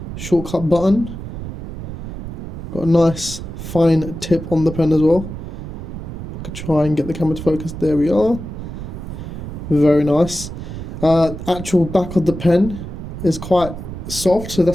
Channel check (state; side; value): noise; right; rumble, 9 dB below the sound